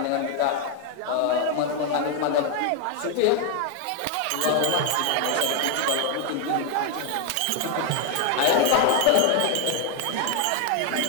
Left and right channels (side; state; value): both; different; correlation 0.01